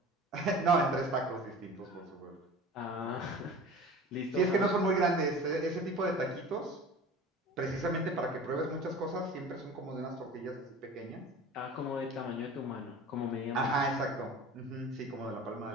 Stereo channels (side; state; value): both; normal; correlation 0.39